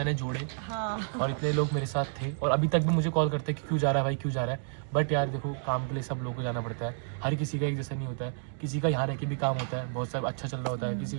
जोड़े। हाँ। और इतने लोग मेरे साथ थे, और अभी तक भी मुझे कॉल करते हैं कि क्यों जा रहा है भाई, क्यों जा रहा है। बट यार देखो काम के लिए सब लोगों को जाना पड़ता है, हर किसी का एक जैसा नहीं होता है, किसी का यहाँ रह के भी काम होता है, बहुत सारा अच्छा चल रहा होता है, किसी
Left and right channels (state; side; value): silent; left; digital silence